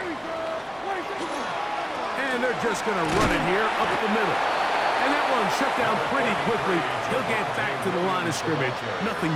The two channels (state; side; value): identical; both; correlation 1.00